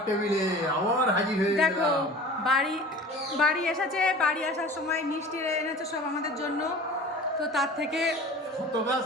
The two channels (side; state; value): both; normal; correlation 0.40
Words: টেবিলে, আবার হাজির হয়ে দেখো গেলাম। বাড়ি বাড়ি এসেছে, বাড়ি আসার সময় মিষ্টি এনেছে সব আমাদের জন্য। তো তার থেকে শত গাছ